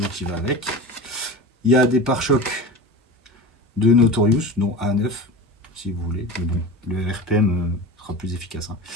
qui va avec. Il y a des pare-chocs de Notorious, dont A9, si vous voulez. Mais bon, le RPM sera plus efficace. Hein.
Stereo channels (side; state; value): both; normal; correlation 0.31